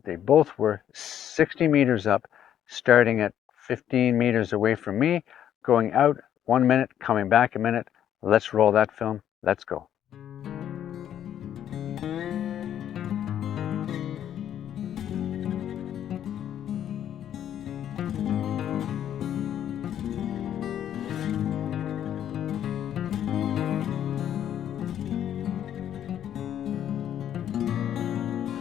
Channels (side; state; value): right; quieter; 10.3 dB